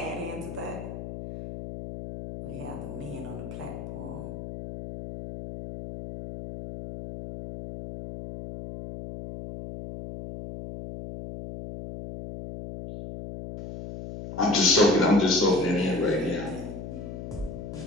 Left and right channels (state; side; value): noise; left; hum, 9 dB below the sound